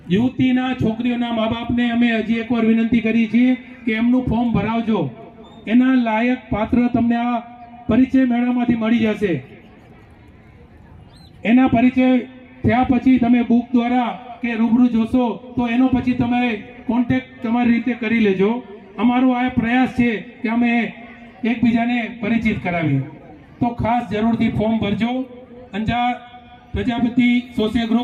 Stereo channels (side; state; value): both; identical; correlation 1.00